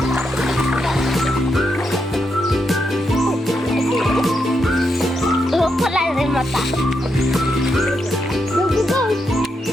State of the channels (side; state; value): both; normal; correlation 0.82